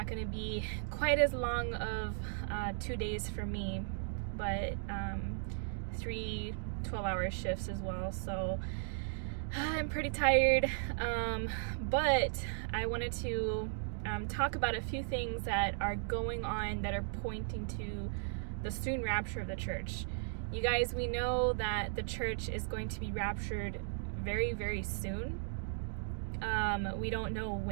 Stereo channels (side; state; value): left; silent; digital silence